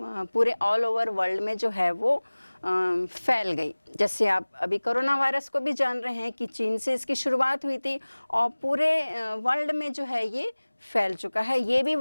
ऑल ओवर वर्ल्ड में जो है वो फैल गई। जैसे आप अभी कोरोना वायरस को भी जान रहे हैं कि चीन से इसकी शुरुआत हुई थी और पूरे वर्ल्ड में जो है ये फैल चुका है। ये भी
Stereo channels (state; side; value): inverted; both; correlation -1.00